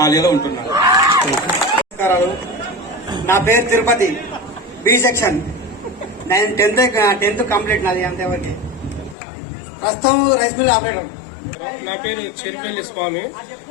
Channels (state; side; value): drops out; right; at 9.2 s